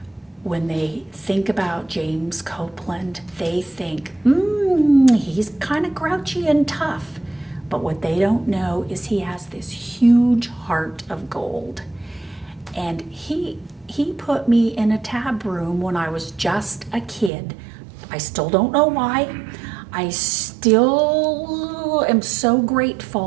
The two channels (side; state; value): left; drops out; at 17.3 s